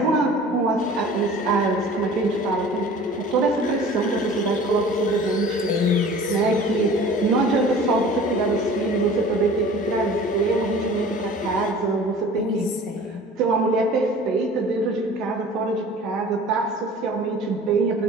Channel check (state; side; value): normal; both; correlation 0.44